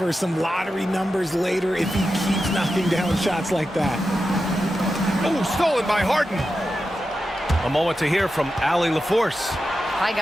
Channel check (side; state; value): both; normal; correlation 0.90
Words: some lottery numbers later if he keeps knocking down shots like that. Oh, stolen by Harden. A moment to hear from Allie LaForce. Hi,